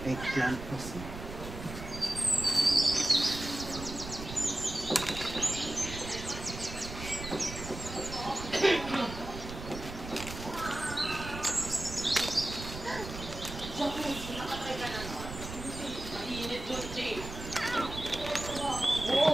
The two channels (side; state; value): right; noise; rumble, 9 dB below the sound